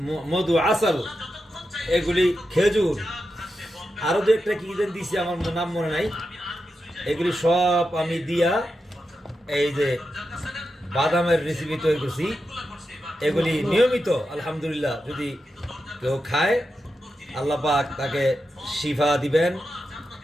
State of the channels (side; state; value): both; normal; correlation 0.88